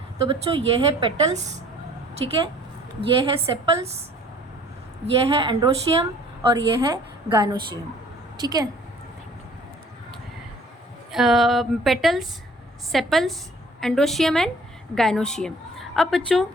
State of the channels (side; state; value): both; normal; correlation 0.54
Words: तो बच्चों ये है पेटल्स, ठीक है, ये है सेपल्स, ये है एंड्रोशियम और ये है गाइनोशियम, ठीक है। Petals, sepals, androecium and gynoecium. अब बच्चों